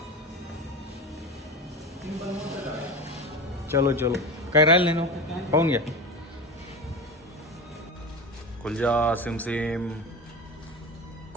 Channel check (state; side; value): normal; both; correlation 0.26